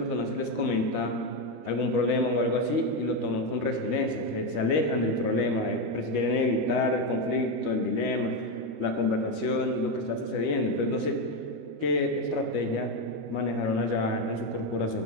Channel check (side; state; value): left; late; 13 ms